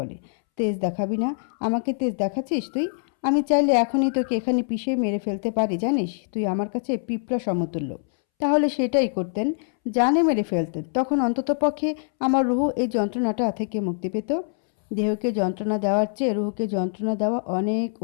তেজ দেখাবি না? আমাকে তেজ দেখাচ্ছিস তুই? আমি চাইলে এখনই তোকে এখানে পিষে মেরে ফেলতে পারি, জানিস? তুই আমার কাছে পিঁপড়া সমতুল্য। তাহলে সেটাই করতেন, জানে মেরে ফেলতেন। তখন অন্ততপক্ষে আমার রুহু এই যন্ত্রণাটা থেকে মুক্তি পেত। দেহকে যন্ত্রণা দেওয়ার চেয়ে রুহুকে যন্ত্রণা দেওয়া অনেক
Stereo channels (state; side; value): silent; right; 62 dB below the other